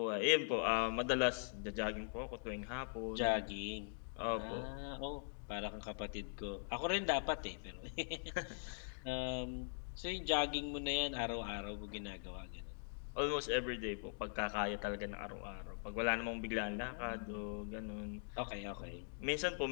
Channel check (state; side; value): silent; right; digital silence